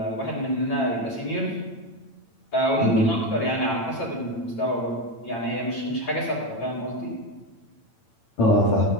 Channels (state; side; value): late; right; 8.9 ms